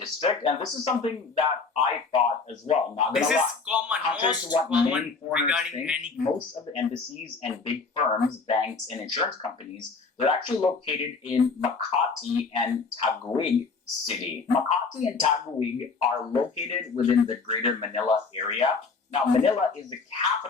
and this is something that I thought as well. Not gonna lie. This is common, most common regarding any. Most of the embassies and big firms, banks, and insurance companies They're actually located in Makati and Taguig City. Makati and Taguig are located within the greater Manila area. Now, Manila is the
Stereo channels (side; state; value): right; quieter; 4.5 dB